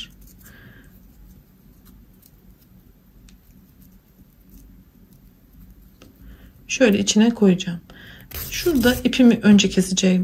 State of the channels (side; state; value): both; identical; correlation 1.00